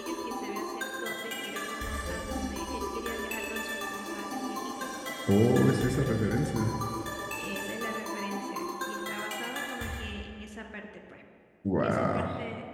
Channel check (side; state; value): both; identical; correlation 1.00